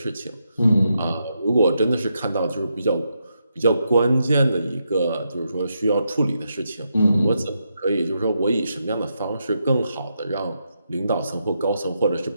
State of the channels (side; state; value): both; inverted; correlation -0.83